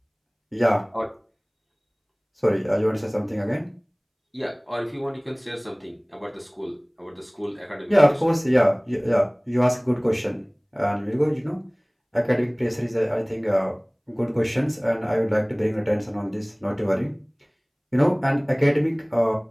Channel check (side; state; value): both; identical; correlation 1.00